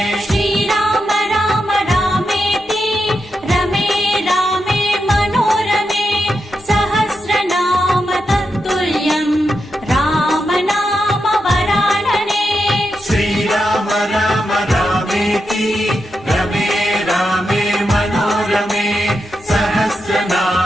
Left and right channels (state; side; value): normal; both; correlation 0.86